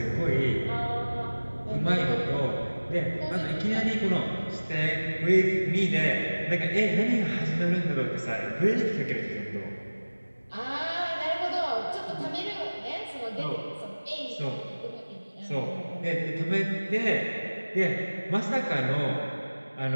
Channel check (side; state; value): both; inverted; correlation -1.00